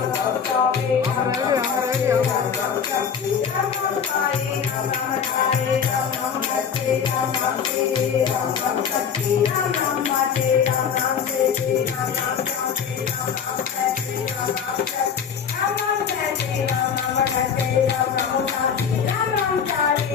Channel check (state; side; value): quieter; right; 7.1 dB